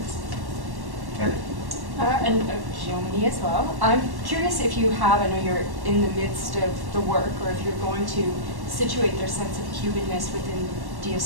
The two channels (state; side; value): late; left; 1.1 ms